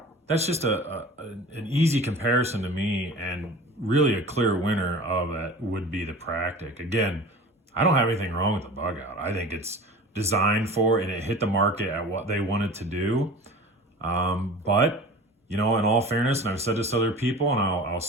that's just an easy comparison to me, and really a clear winner of that would be the Practic. Again, I don't have anything wrong with the Bugout. I think it's designed for, and it hit the market at what they wanted to do. But in all fairness, and I've said this to other people, and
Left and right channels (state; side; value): normal; both; correlation 0.38